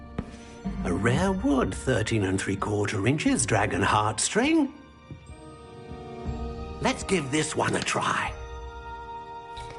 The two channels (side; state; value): both; identical; correlation 1.00